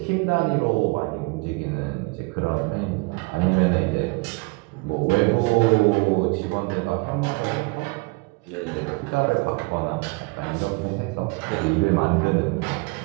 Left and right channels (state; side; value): quieter; left; 28.0 dB